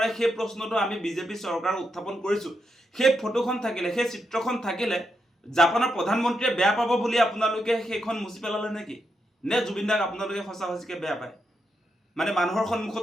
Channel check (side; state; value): both; normal; correlation 0.83